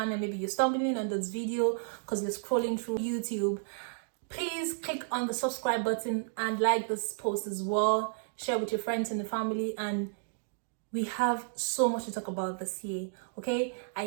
maybe you're stumbling on this video because you're scrolling through YouTube, please click on the subscribe button and like this post as well. Share with your friends and the family, and we have so much to talk about this year. Okay,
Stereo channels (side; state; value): left; silent; digital silence